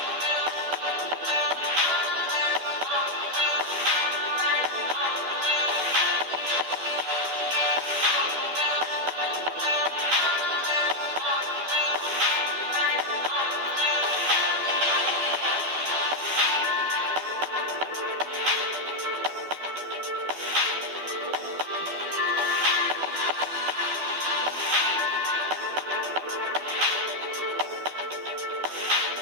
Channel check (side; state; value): left; late; 12 ms